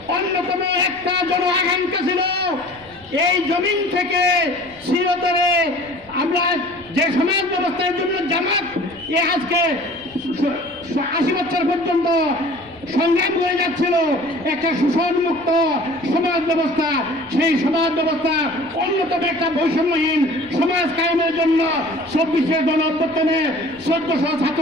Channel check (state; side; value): noise; left; rumble, 26 dB below the sound